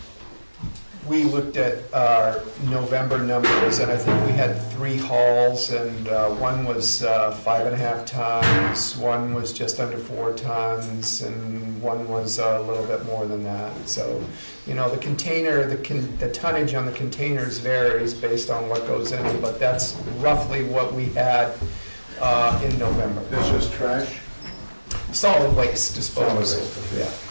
We looked at our November numbers, and I think we had 3 hauls, and one was 5.5 tons, one was just under 4 tons, and one was a little bit more than that. So, you know, the container, the tonnage on the containers varies based on what goes in, but that's roughly what we had in November. That's just trash? Solid waste disposal. Solid waste, okay.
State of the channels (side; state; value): both; inverted; correlation -1.00